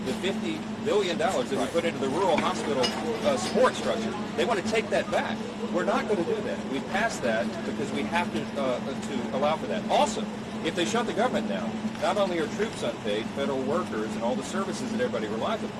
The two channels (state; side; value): identical; both; correlation 1.00